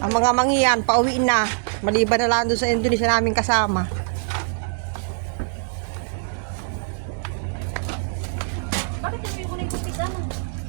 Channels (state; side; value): silent; left; digital silence